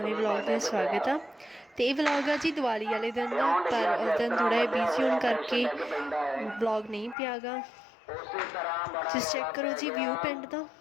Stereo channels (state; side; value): drops out; right; at 7.2 s